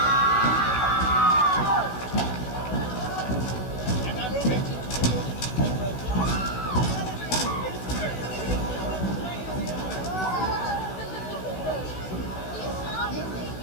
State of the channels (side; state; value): right; late; 16 ms